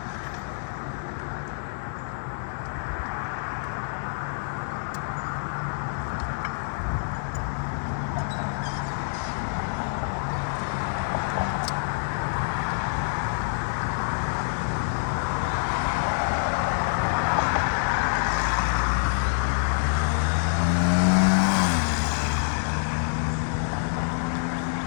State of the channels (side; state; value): right; silent; digital silence